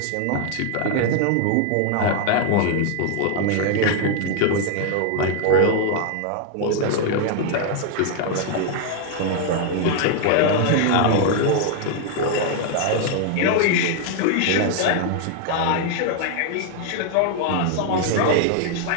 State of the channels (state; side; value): different; both; correlation 0.00